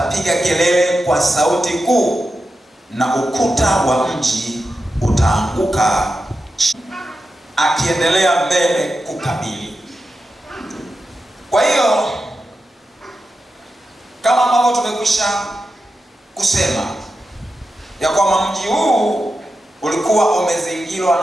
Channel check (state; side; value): normal; both; correlation 0.90